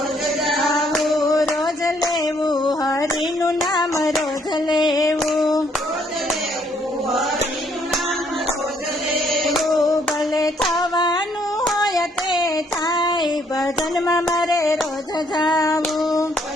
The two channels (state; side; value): normal; both; correlation 0.68